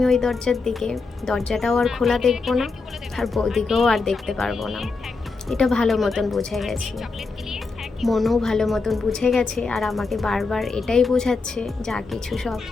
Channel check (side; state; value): right; quieter; 4.1 dB